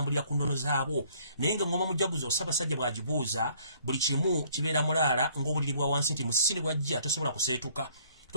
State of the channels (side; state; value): both; inverted; correlation -0.61